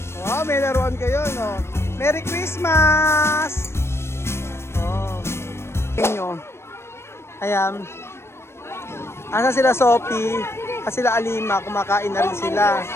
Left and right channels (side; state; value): right; late; 0.12 ms